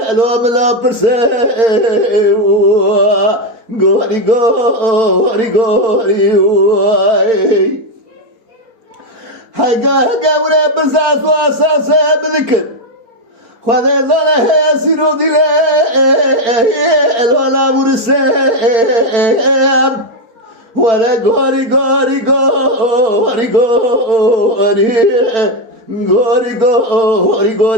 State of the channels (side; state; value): left; late; 4.4 ms